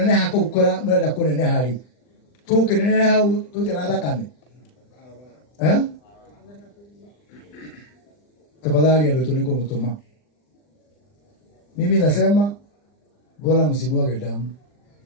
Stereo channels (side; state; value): right; late; 39 ms